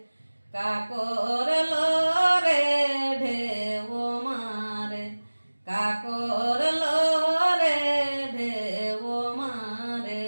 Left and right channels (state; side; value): inverted; both; correlation -1.00